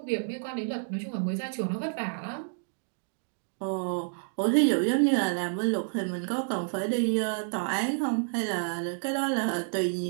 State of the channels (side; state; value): left; silent; digital silence